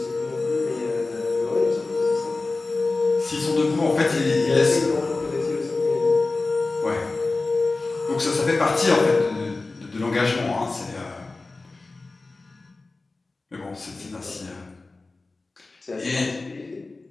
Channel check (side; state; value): right; quieter; 3.5 dB